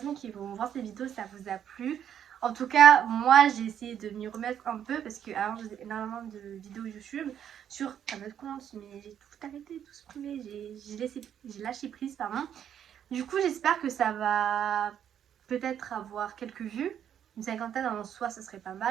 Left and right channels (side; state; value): left; quieter; 9.4 dB